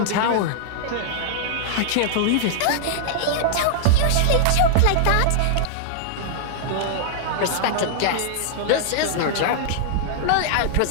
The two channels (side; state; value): both; different; correlation -0.01